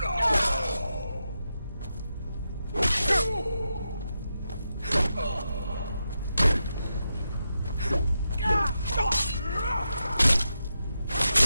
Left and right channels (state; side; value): inverted; both; correlation -0.87